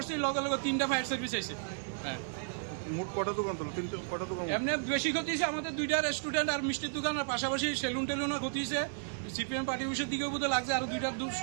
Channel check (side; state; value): left; silent; digital silence